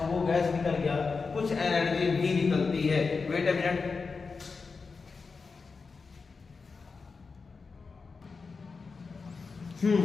गैस निकल गया। कुछ एनर्जी भी निकलती है। Wait a minute.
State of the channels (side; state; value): right; quieter; 4.7 dB